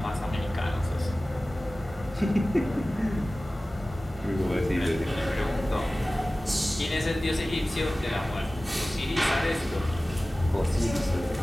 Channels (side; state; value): both; normal; correlation 0.97